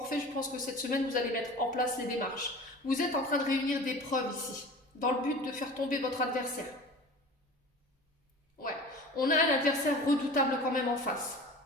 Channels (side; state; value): both; normal; correlation 0.38